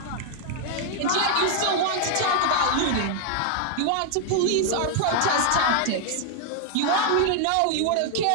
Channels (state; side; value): different; both; correlation 0.00